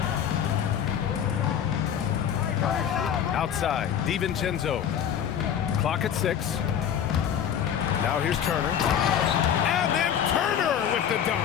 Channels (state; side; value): quieter; right; 9.0 dB